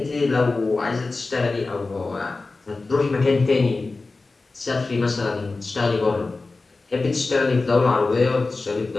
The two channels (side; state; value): right; quieter; 3.6 dB